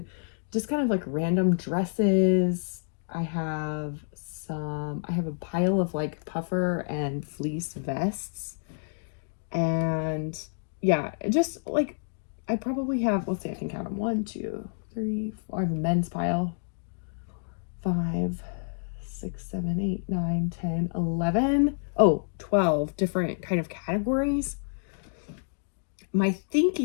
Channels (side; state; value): right; silent; digital silence